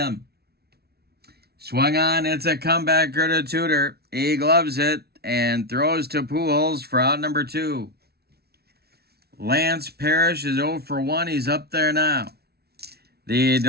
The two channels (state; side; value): late; left; 0.46 ms